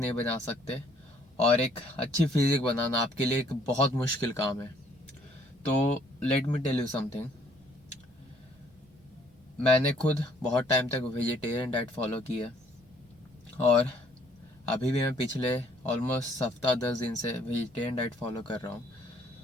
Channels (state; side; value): noise; right; rumble, 29 dB below the sound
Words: बना सकते। और एक अच्छी फिजिक बनाना आपके लिए एक बहुत मुश्किल काम है। तो let me tell you something. मैंने खुद बहुत टाइम तक वेजिटेरियन डाइट फॉलो की है और अभी भी मैं पिछले ऑलमोस्ट हफ्ता 10 दिन से वेजिटेरियन डाइट फॉलो कर रहा हूँ।